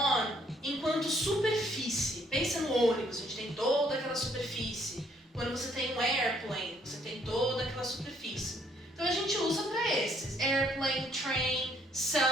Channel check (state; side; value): normal; both; correlation 0.66